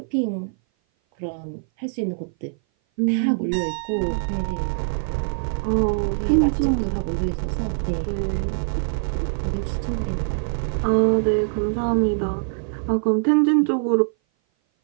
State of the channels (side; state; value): left; silent; 57 dB below the other